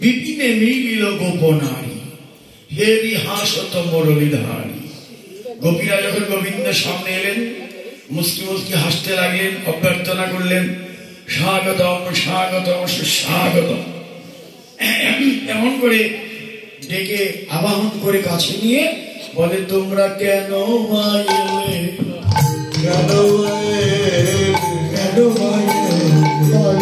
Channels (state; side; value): identical; both; correlation 1.00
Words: মিলিল গোপনারী, হেরি হাসত মুরলীধারী। গোপীরা যখন গোবিন্দের সামনে এলেন, মুস্কি মুস্কি হাসতে লাগলেন, অভ্যর্থনা করলেন, স্বাগতম স্বাগতম সুস্বাগতম। এমন করে ডেকে আবাহন করে কাছে নিয়ে বলে, তোমরা কেন এলে, কেন